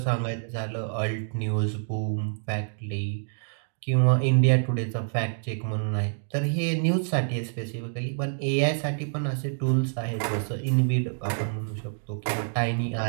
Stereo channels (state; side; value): silent; left; digital silence